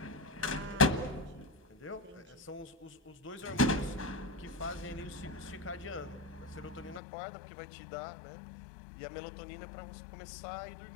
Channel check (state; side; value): drops out; right; at 7.0 s